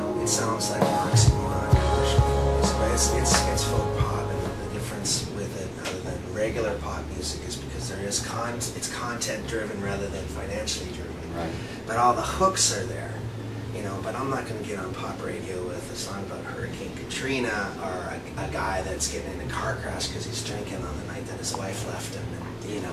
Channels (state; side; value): identical; both; correlation 1.00